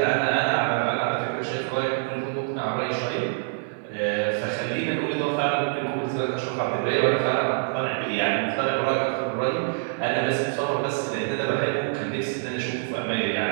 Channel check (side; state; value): left; silent; digital silence